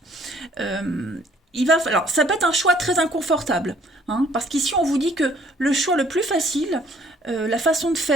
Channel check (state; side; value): normal; both; correlation 0.60